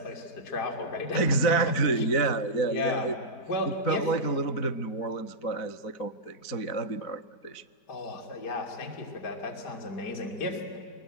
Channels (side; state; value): right; late; 4.1 ms